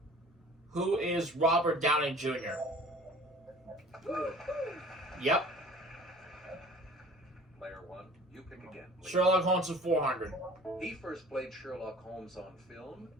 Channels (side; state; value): both; normal; correlation 0.47